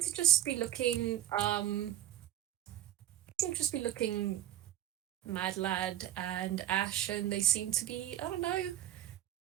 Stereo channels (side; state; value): left; quieter; 12.7 dB